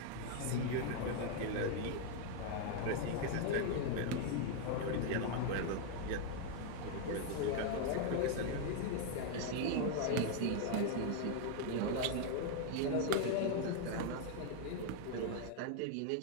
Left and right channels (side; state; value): both; different; correlation 0.00